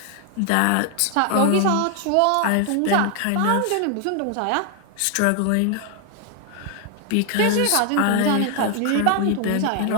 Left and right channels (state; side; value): different; both; correlation 0.00